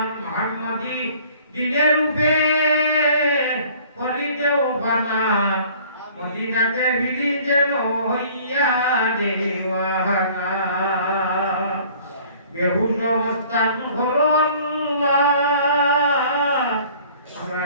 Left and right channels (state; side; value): inverted; both; correlation -0.52